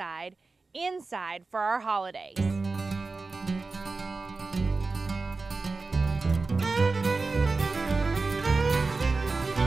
inside for our holidays.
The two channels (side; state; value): left; quieter; 3.9 dB